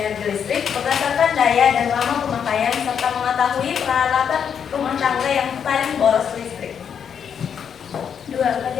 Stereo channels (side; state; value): right; quieter; 7.7 dB